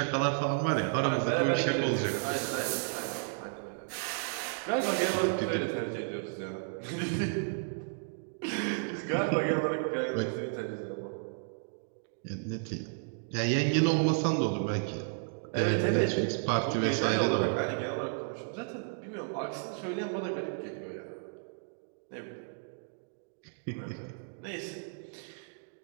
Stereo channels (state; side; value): silent; left; digital silence